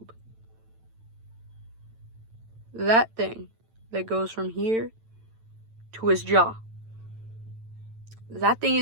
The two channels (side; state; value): left; late; 9.0 ms